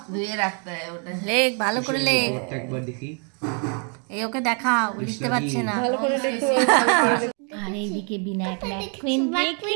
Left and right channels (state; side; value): quieter; left; 39.4 dB